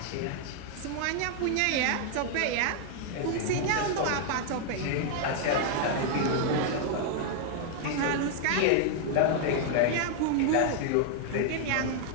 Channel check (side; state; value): both; different; correlation 0.00